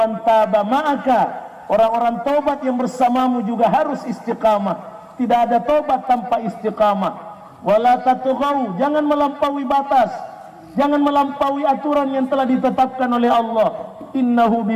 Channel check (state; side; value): identical; both; correlation 1.00